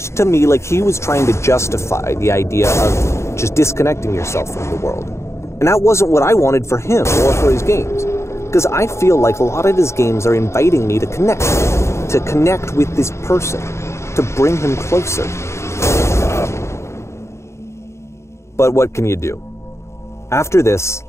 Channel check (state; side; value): late; right; 0.13 ms